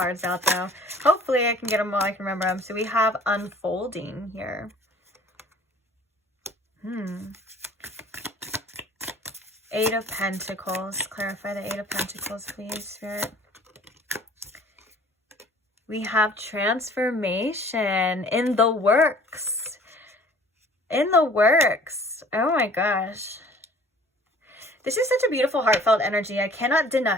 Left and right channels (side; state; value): both; normal; correlation 0.51